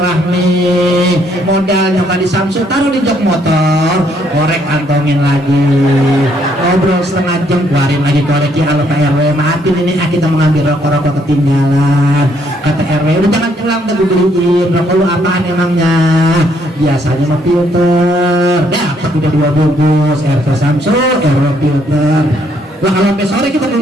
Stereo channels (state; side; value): normal; both; correlation 0.70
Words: Modalnya tadi Samsul taruh di jok motor, korek kantongin lagi. Ngobrol setengah jam, keluarin lagi korek ya Allah Pak RW. Maafin ini kita mengambil rokok-rokok ketinggalan. Kata RW, udah jangan pulang udah gue beliin. Rokok lu apaan emangnya? Biasanya mah filter. Dapat udah 2 bungkus RT Samsul, RW filter. Lah kalau sampai sore kita